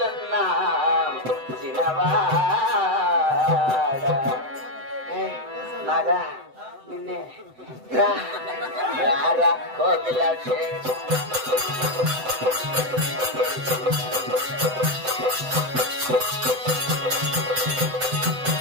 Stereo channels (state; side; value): late; left; 7.8 ms